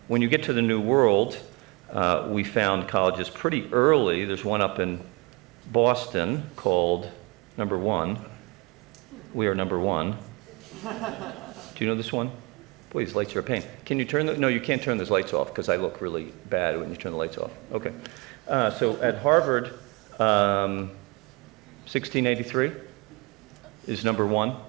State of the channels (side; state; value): left; quieter; 28.0 dB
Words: When you get to the New World, we found colleges pretty early. There's one up in Boston called Number One. We are Number One. Do you know this one? Boy, these lights are a pain. Can you turn no, you can't turn those lights off because I look really bad when you turn the lights off. Okay. So at Harvard, 1683 is Number One.